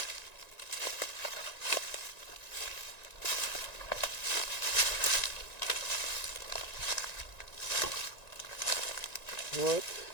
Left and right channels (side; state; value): right; late; 1.9 ms